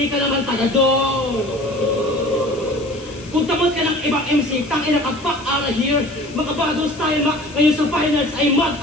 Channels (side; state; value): left; noise; hiss, 22 dB below the sound